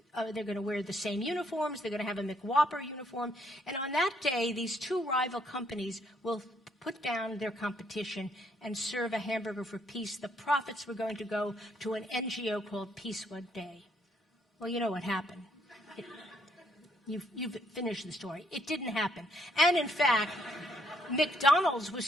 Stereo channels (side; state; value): both; normal; correlation 0.70